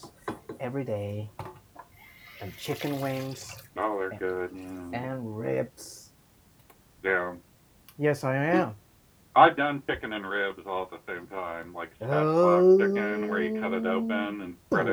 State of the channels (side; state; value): both; identical; correlation 1.00